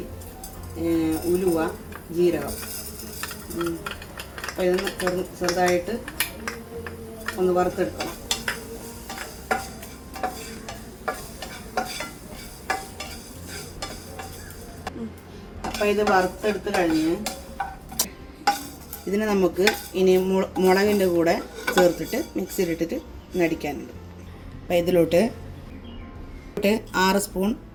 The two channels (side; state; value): both; identical; correlation 1.00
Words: ഉലുവ, ജീരകം. അപ്പോൾ ഇതൊന്ന് ചെറുതായിട്ട് ഒന്ന് വറുത്തെടുക്കണം. അപ്പോൾ ഇത് വറുത്തെടുത്ത് കഴിഞ്ഞ് ഇതിനെ നമുക്ക് ഇനി മുളകിൻ്റെ കൂടെ ചേർത്തിട്ട് മിക്സിയിലിട്ടിട്ട് നടിക്കാനുണ്ട്. അപ്പോൾ ഇതിലോട്ട് 6 സ്പൂൺ